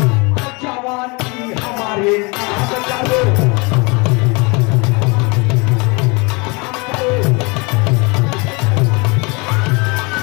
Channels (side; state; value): right; quieter; 28.6 dB